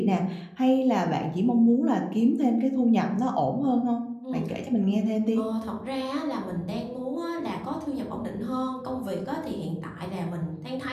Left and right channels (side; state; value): both; identical; correlation 1.00